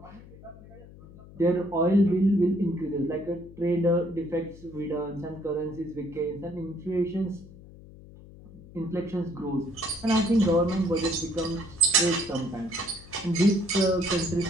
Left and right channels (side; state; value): left; noise; hum, 19 dB below the sound